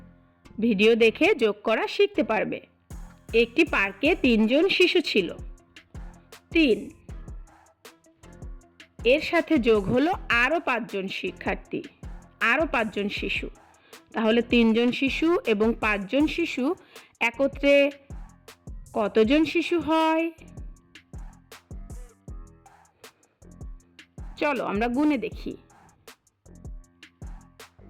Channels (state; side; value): identical; both; correlation 1.00